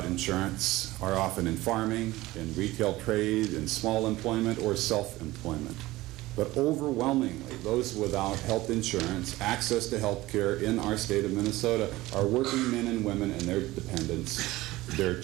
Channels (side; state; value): left; quieter; 18.3 dB